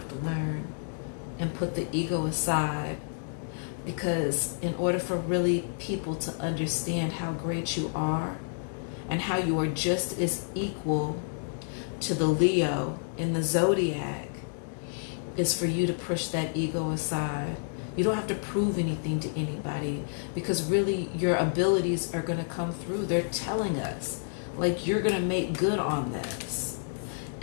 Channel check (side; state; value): right; silent; digital silence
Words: to learn and put the ego aside. Because in order for really people to understand how great you are and how you are just as equal to the Leo in the zodiac, is for you to push that ego aside. You don't have to prove anything to anybody, because really your abilities are going to come through. They're telling us, like, you're going to make good on this.